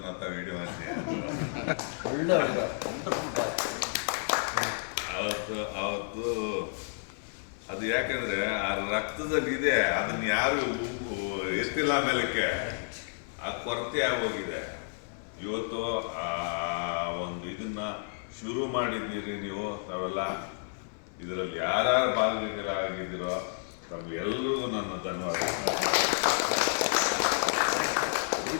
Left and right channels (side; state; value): right; silent; 57 dB below the other